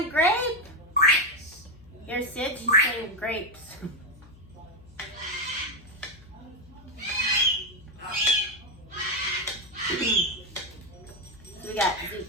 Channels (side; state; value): left; noise; hum, 22 dB below the sound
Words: grape? Here, Sid, she's saying grapes. We got